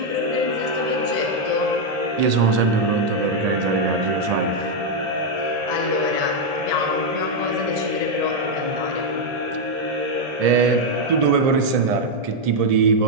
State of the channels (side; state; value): left; late; 1.7 ms